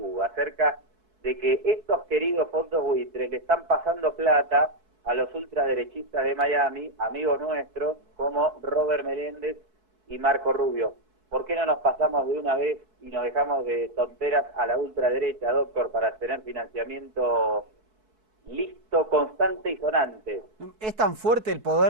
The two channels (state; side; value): late; left; 4.6 ms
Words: acerca de que estos queridos fondos buitres le están pasando plata a los ultraderechistas de Miami, amigos nuestros, como Robert Meléndez y Marco Rubio. ¿Por qué no nos pasamos de una vez y nos dejamos de tonteras a la ultraderecha, doctor, para tener financiamiento listo, constante y sonante? Es tan fuerte el